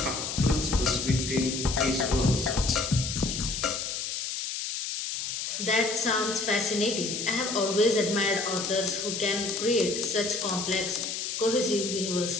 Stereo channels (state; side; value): noise; left; hiss, 4 dB below the sound